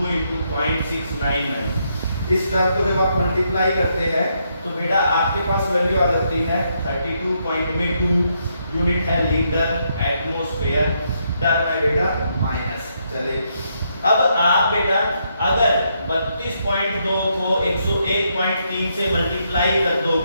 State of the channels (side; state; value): both; inverted; correlation -0.77